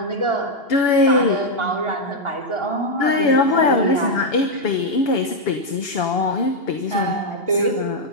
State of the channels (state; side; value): late; right; 2.8 ms